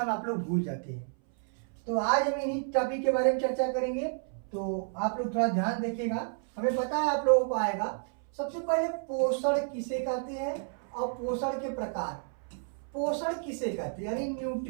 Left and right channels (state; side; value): silent; left; 57 dB below the other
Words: में आप लोग भूल जाते हैं। तो आज हम इन्हीं टॉपिक के बारे में चर्चा करेंगे। तो आप लोग थोड़ा ध्यान देखिएगा। हमें पता है आप लोगों को आएगा। सबसे पहले पोषण किसे कहते हैं और पोषण के प्रकार। पोषण किसे कहते हैं यानी